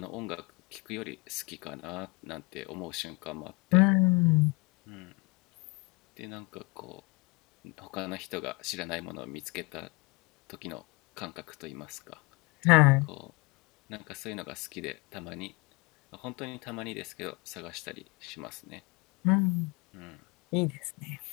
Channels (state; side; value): quieter; right; 26.6 dB